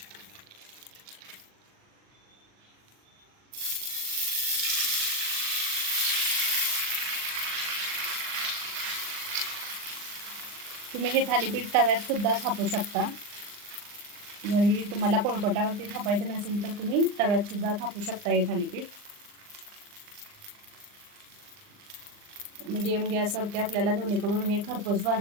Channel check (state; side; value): late; left; 39 ms